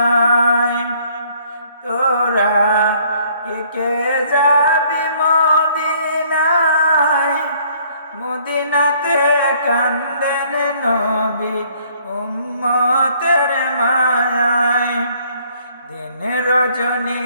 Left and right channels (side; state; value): both; inverted; correlation -0.61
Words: তোরা কে কে যাবি মদিনায়, মদিনাতে কান্দেন নবী উম্মতের মায়ায়। দিন রজনী